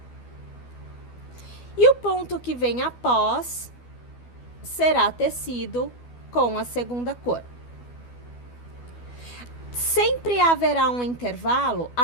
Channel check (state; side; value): late; right; 12 ms